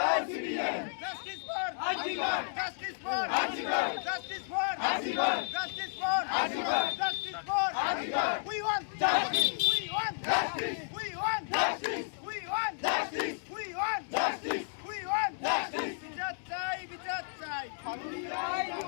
justice for justice for justice for justice for justice for we want justice we want justice we want justice we want justice we want justice we want justice বিচার চাই, বিচার চাই,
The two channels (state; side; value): silent; right; digital silence